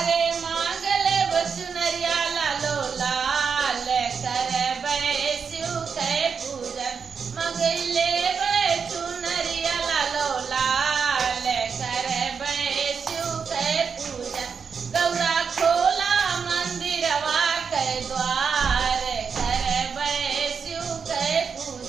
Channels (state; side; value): quieter; left; 6.1 dB